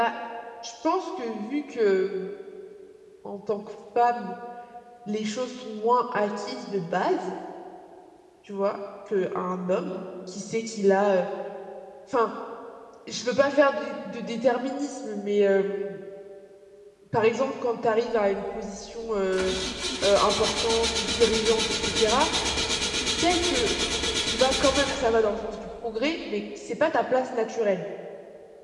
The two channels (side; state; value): both; identical; correlation 1.00